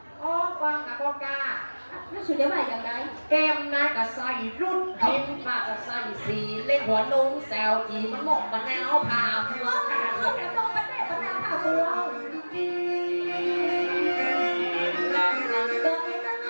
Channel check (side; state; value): both; inverted; correlation -1.00